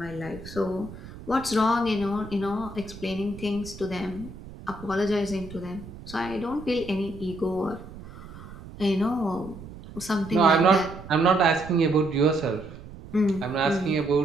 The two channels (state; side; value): noise; right; rumble, 15 dB below the sound